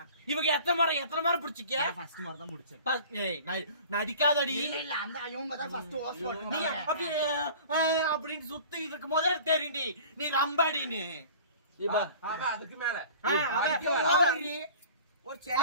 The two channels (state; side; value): inverted; both; correlation -0.43